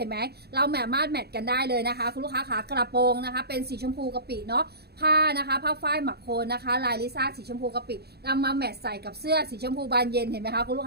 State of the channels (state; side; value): late; left; 0.47 ms